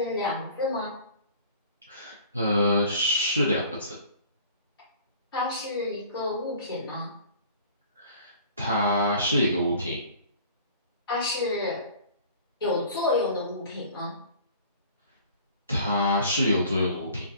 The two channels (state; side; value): inverted; both; correlation -0.47